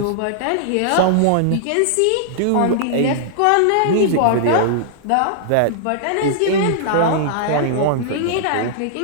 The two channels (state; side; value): different; both; correlation -0.01